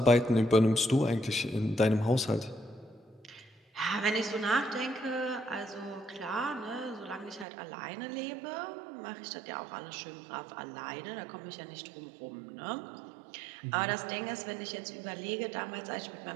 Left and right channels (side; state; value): left; drops out; at 7.5 s